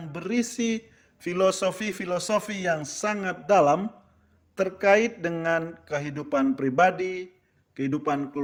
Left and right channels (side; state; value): both; identical; correlation 1.00